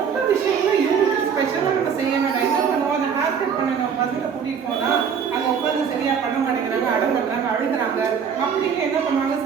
விஷயங்களை யூனிக் ஸ்பெஷலாக நம்ம செய்ய வேண்டாம். என்ன பண்ணுவோம், அந்த ஹேர் கட் பண்ண நம்ம பசங்களை கூட்டிகிட்டு போனால் அங்கே உட்காந்து சரியாக பண்ண மாட்டேங்கிறாங்க, அடம் பண்ணுறாங்க, அழுகிறாங்க அப்படின்னு என்ன பண்ணுவாங்க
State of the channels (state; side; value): quieter; left; 7.0 dB